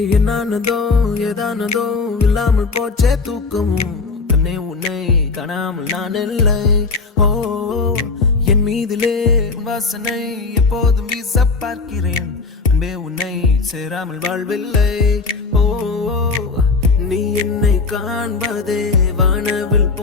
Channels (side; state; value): right; quieter; 4.3 dB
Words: என்னானதோ ஏதானதோ இல்லாமல் போச்சே தூக்கமும், கண்ணே உன்னை காணாமல் நான் இல்லை. ஓ என் மீதிலே வாசனை எப்போதும் வீச பார்க்கிறேன், அன்பே உன்னை சேராமல் வாழ்வில்லை. ஓ நீ என்னை காண்பதே வானவில்